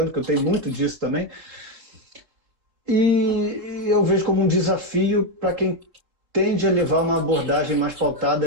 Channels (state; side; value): late; left; 3.7 ms